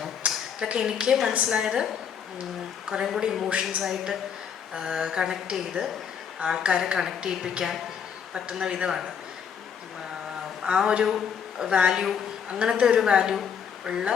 ഇതൊക്കെ എനിക്ക് മനസ്സിലായത് കുറേ കൂടി ഇമോഷൻസായിട്ട് കണക്ട് ചെയ്ത് ആൾക്കാരെ കണക്ട് ചെയ്യിപ്പിക്കാൻ പറ്റുന്ന വിധമാണ്. ആ ഒരു വാല്യൂ, അങ്ങനത്തെ ഒരു വാല്യൂ ഉള്ള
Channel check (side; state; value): right; quieter; 7.5 dB